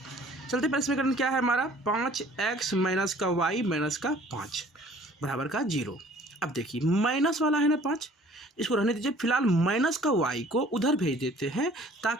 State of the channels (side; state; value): both; normal; correlation 0.53